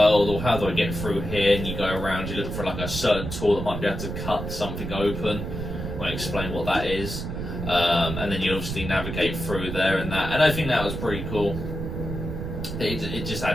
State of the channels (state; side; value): noise; right; rumble, 6 dB below the sound